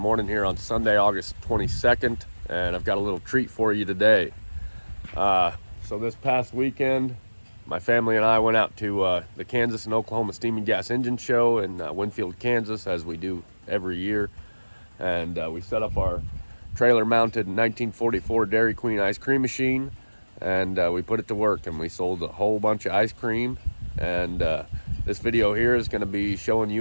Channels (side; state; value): both; inverted; correlation -1.00